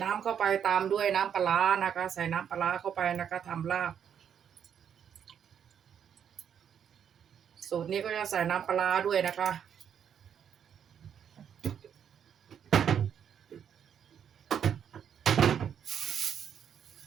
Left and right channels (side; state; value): left; quieter; 8.4 dB